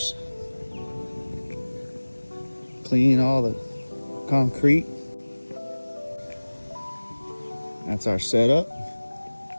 clean all the concrete. That's our setup.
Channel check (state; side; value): inverted; both; correlation -1.00